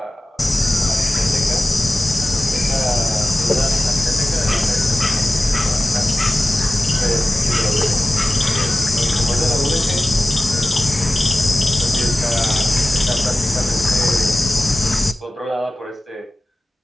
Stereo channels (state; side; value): normal; both; correlation 0.95